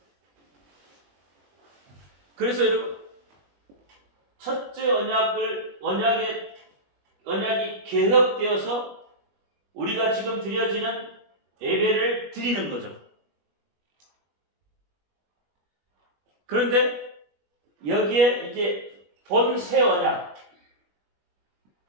그래서 여러분 첫째 언약이 개혁되어서 우리가 지금 드려지는 예배를 드리는 거죠. 그런데 여기에 이제 본 새 언약,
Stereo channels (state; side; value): late; left; 21 ms